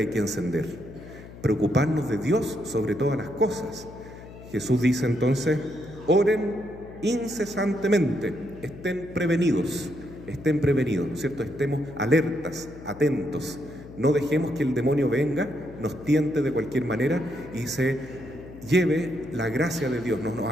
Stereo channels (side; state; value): left; noise; hum, 16 dB below the sound